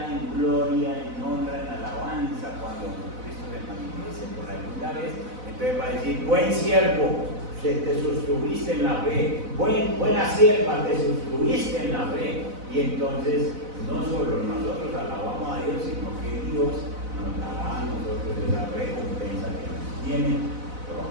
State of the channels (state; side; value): late; left; 4.0 ms